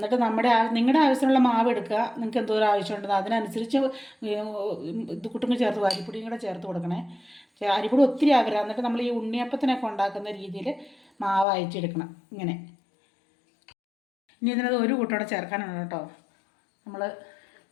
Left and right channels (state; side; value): drops out; right; at 11.5 s